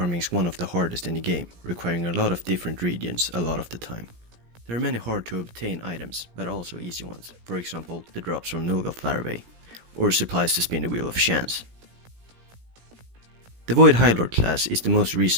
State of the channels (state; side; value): late; left; 17 ms